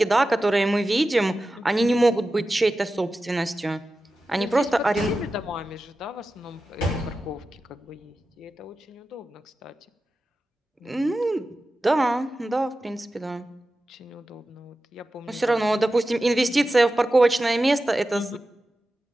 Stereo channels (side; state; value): both; normal; correlation 0.93